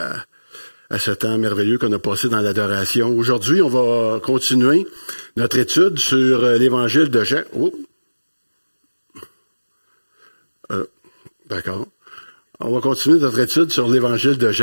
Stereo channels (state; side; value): inverted; both; correlation -1.00